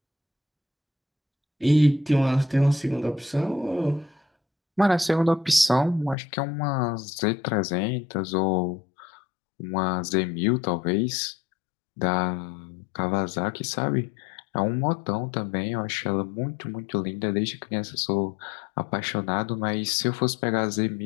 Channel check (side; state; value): right; drops out; at 6.2 s